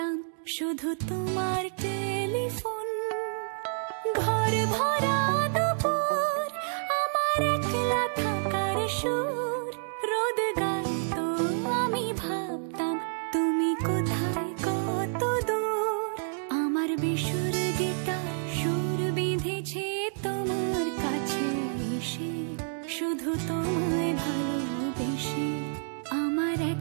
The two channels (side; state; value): left; silent; digital silence